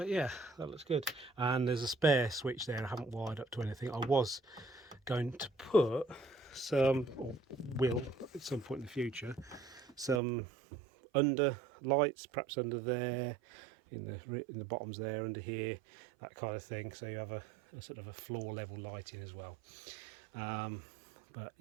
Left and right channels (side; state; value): left; drops out; at 10.2 s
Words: yeah, that looks good. And there's a spare switch there I haven't wired up to anything. I was going to put some, or will at some point in the future, some under lights, perhaps under there, in the bottoms there, under here, that kind of thing, so you have a sort of a floor level lighting as well. But